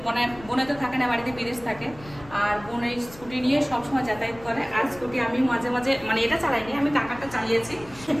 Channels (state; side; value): noise; left; rumble, 19 dB below the sound